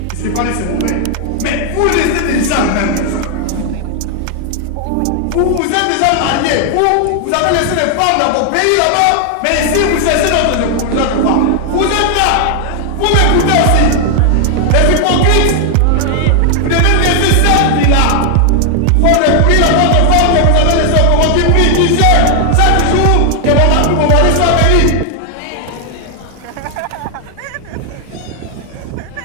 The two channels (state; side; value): different; both; correlation 0.00